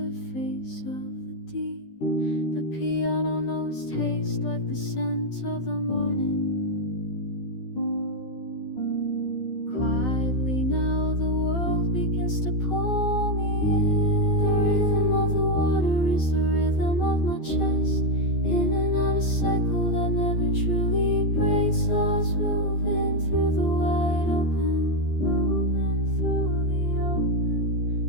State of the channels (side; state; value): right; late; 12 ms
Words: of the deep. The piano notes taste like the scent of the morning. Quietly now the world begins to pull me in. The rhythm of the water is the rhythm of my chest. In and out a cycle that never truly breaks. Lost moving through the wide open, moving through the